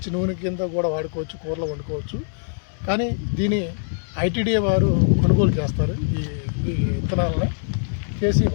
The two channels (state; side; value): silent; right; digital silence